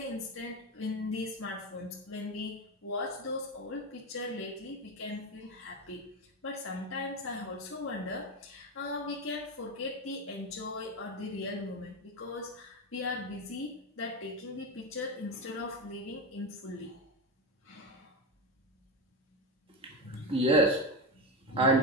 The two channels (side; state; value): both; normal; correlation 0.16